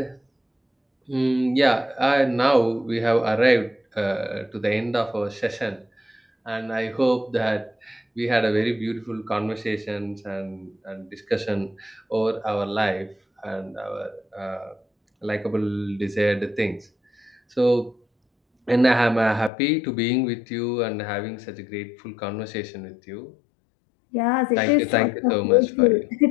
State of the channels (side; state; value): right; drops out; at 19.5 s